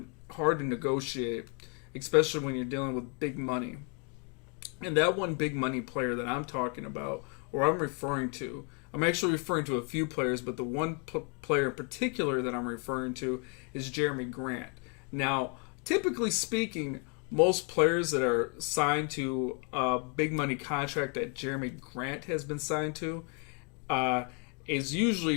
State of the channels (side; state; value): right; quieter; 35.6 dB